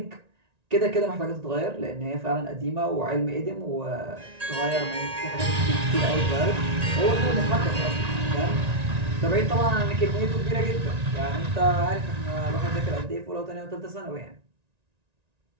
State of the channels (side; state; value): left; late; 1.9 ms